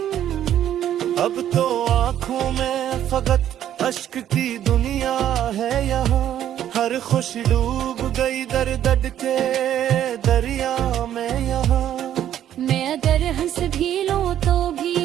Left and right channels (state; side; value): quieter; left; 11.0 dB